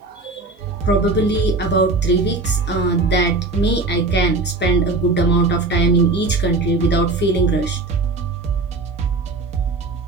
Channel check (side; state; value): left; quieter; 3.5 dB